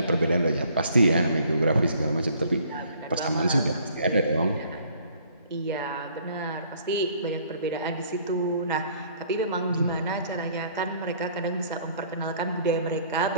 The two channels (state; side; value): inverted; both; correlation -0.59